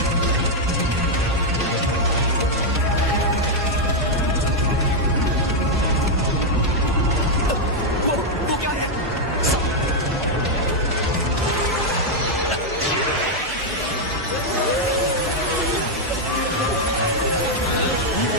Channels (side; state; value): both; normal; correlation -0.01